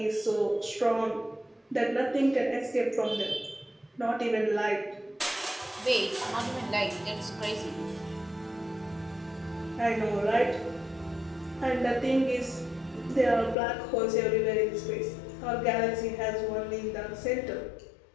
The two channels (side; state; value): right; drops out; at 13.6 s